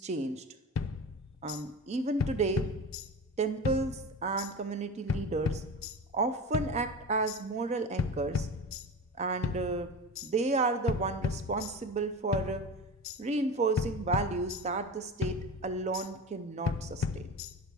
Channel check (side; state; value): both; normal; correlation 0.30